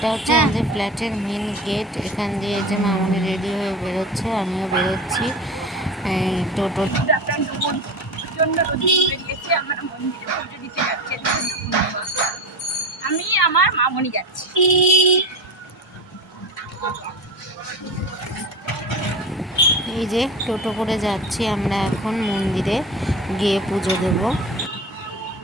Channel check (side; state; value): both; normal; correlation 0.27